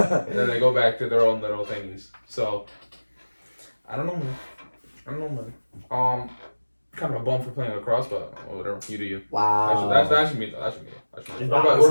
then they go back to their own little things. So I don't know, man. Kind of a bum for playing lacrosse, but whatever. You do you. Wow. That should be though. That should be. It's What not- about you?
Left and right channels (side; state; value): both; inverted; correlation -1.00